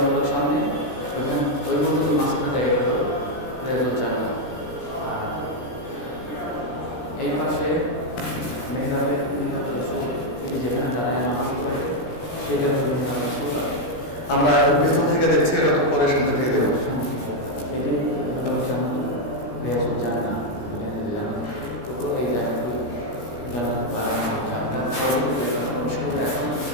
মুবারক সামনে, ওইখান ওই পর্যন্ত মাঝখানে জায়গাটা হলো রিয়াজুল জান্নাহ। আর এই পাশে মেহরাবে রাসূল, তিনি যেখানে দাঁড়ায় নামাজ পড়ে, সেটা হলো মেহরাব রাসূল। আমরা পেছন থেকে দেখছি, এটা তো পরে সামনে থেকে দেবো। এটি জান্নাত, রিয়াজুল জান্নাহ, দুনিয়াতে যে জান্নাত টুকরো, এই জায়গাগুলো জান্নাত বাড়ানো হচ্ছে। আমরা প্রবেশ করবো, এখন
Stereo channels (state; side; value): late; right; 17 ms